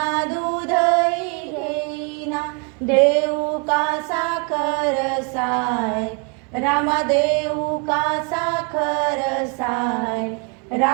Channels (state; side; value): quieter; left; 36.1 dB